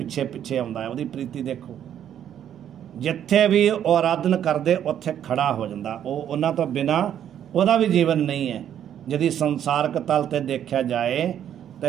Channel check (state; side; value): quieter; left; 10.0 dB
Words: ਪਿੱਛੇ ਆਉਂਦਾ ਹੈ। ਉਹਦੀ ਪ੍ਰੀਤੀ ਦੇਖੋ, ਜਿੱਥੇ ਵੀ ਉਹ ਆਰਾਧਨ ਕਰਦੇ ਉੱਥੇ ਖੜਾ ਹੋ ਜਾਂਦਾ। ਉਹ ਉਹਨਾਂ ਤੋਂ ਬਿਨਾ ਉਹਦਾ ਵੀ ਜੀਵਨ ਨਹੀਂ ਹੈ। ਜਦੀ ਸੰਸਾਰਕ ਤਲ ਤੇ ਦੇਖਿਆ ਜਾਏ